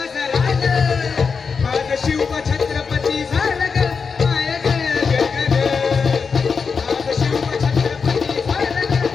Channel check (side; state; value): right; quieter; 5.4 dB